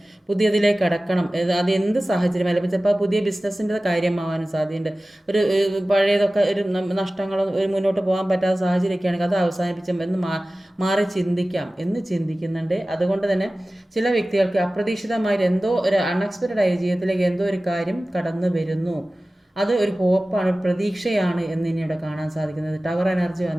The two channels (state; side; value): normal; both; correlation 0.97